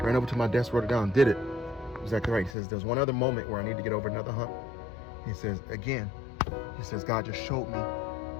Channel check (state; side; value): drops out; right; at 2.6 s